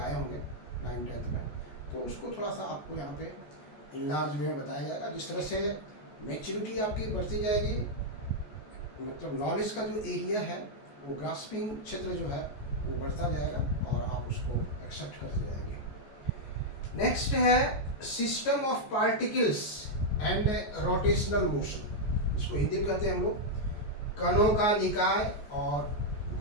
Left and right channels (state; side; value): late; right; 14 ms